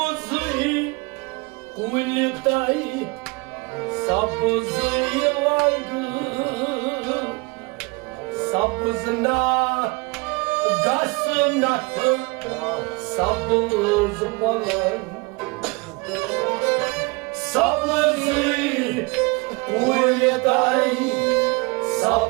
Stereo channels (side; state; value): left; quieter; 26.9 dB